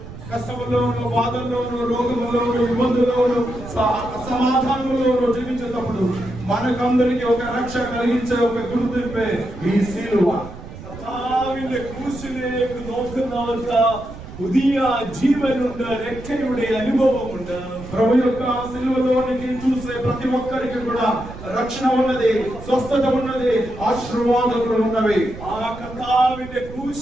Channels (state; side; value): noise; right; rumble, 14 dB below the sound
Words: కష్టములోను, బాధల్లోను, రోగములోను, ఇబ్బందుల్లోను, అసమాధానంలోను జీవించేటప్పుడు మనకందరికి ఒక రక్ష కలిగించే ఒక గుర్తింపే ఈ సిలువ. കർത്താവിന്റെ ക്രൂശിലേക്ക് നോക്കുന്നവർക്ക് പുതിയ ജീവനുണ്ട്, രക്ഷയുടെ അനുഭവമുണ്ട്. ప్రభు యొక్క సిలువలోనికి చూసే ప్రతి ఒక్కరికి కూడా రక్షణ ఉన్నది, స్వస్థత ఉన్నది, ఆశీర్వాదములు ఉన్నవి. ആ കർത്താവിന്റെ